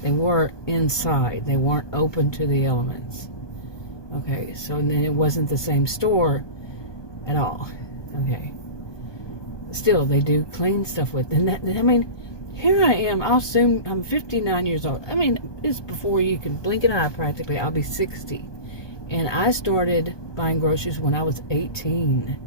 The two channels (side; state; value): right; late; 1.2 ms